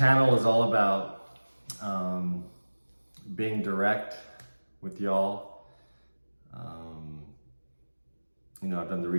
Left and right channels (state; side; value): inverted; both; correlation -1.00